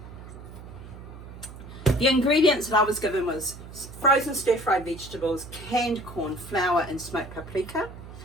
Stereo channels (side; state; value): right; noise; hum, 14 dB below the sound